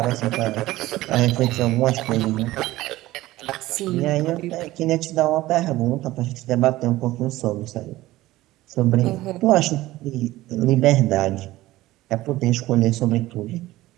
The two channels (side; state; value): left; quieter; 17.0 dB